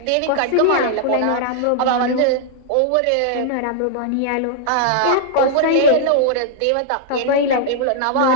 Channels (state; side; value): different; both; correlation -0.01